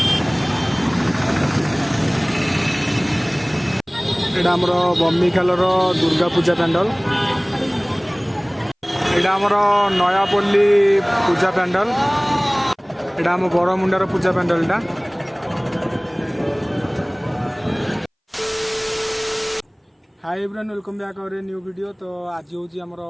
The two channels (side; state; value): both; identical; correlation 1.00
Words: एटा हमर बम्बीखाल दुर्गा पूजा पैंडल एटा हमर नयापल्ली पूजा पैंडल एटा हम बड़मुंडार पूजा पैंडल एटा hi everyone welcome back our new video. तो आज हूँ आमर